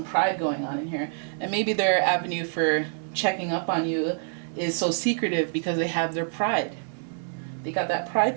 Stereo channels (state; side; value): silent; left; 61 dB below the other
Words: pride going on in here. And maybe their avenue for checking up on you is so secretive because they have their pride. They got that